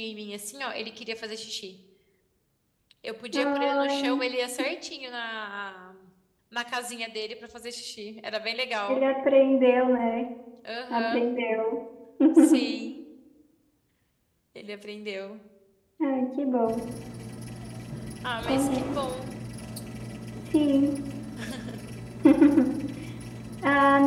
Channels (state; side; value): identical; both; correlation 1.00